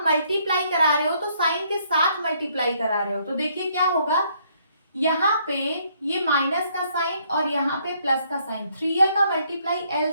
मल्टीप्लाई करा रहे हो तो साइन के साथ मल्टीप्लाई करा रहे हो, तो देखिए क्या होगा, यहाँ पे ये माइनस का साइन और यहाँ पे प्लस का साइन, 3l का मल्टीप्लाई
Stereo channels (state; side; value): inverted; both; correlation -0.68